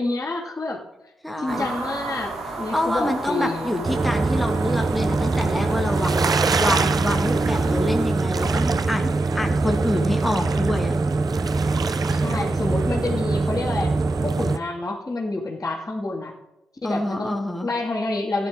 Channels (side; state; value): both; normal; correlation 0.87